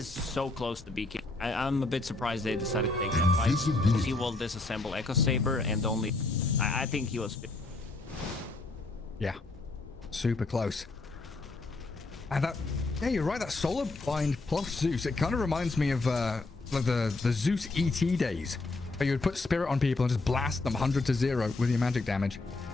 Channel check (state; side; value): quieter; right; 3.3 dB